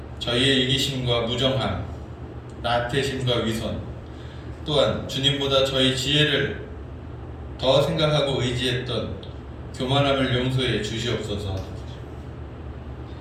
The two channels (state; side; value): identical; both; correlation 1.00